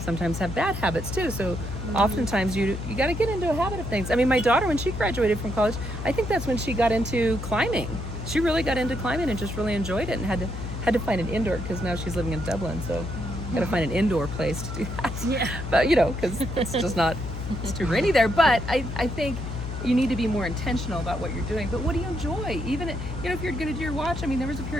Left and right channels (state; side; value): noise; left; hum, 6 dB below the sound